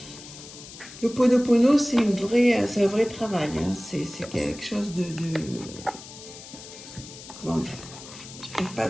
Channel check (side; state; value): left; noise; hiss, 15 dB below the sound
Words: L'Ho'oponopono, c'est un vrai travail. Hein. C'est quelque chose de comment dire? Je n'arrive pas à